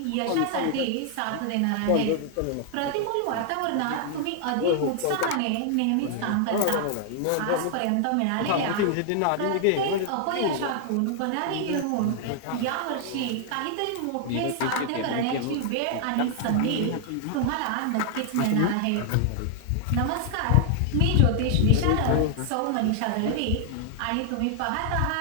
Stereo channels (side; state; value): both; different; correlation 0.00